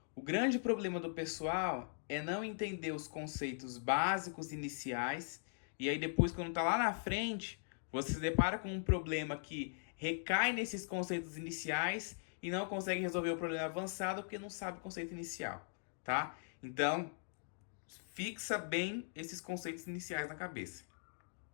o grande problema do pessoal é não entender os conceitos básicos iniciais e aí depois, quando tá lá na frente, você se depara com um problema que recai nesses conceitos iniciais e não consegue resolver o problema avançado porque não sabe o conceito inicial, tá? Então, fixa bem esses conceitos iniciais na cabeça.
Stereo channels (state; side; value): silent; right; digital silence